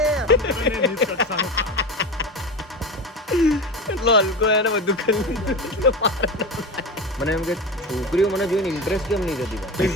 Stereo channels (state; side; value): normal; both; correlation 0.25